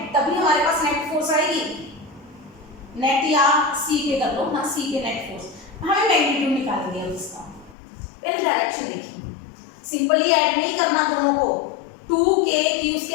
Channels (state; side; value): drops out; right; at 7.8 s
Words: तभी हमारे पास नेट फोर्स आएगी। नेट या सी पे कर लो ना, सी पे नेट फोर्स, हमें मैग्नीट्यूड निकालेंगे अब इसका। पहले डायरेक्शन देखिए, सिंपली ऐड नहीं करना दोनों को, 2k q